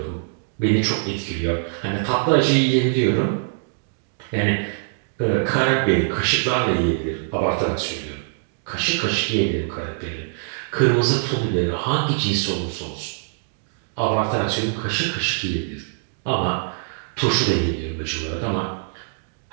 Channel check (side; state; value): left; silent; digital silence